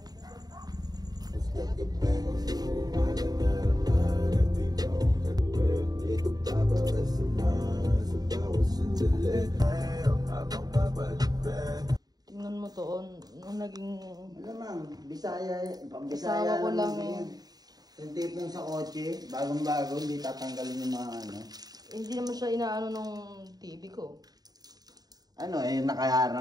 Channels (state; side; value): late; left; 0.19 ms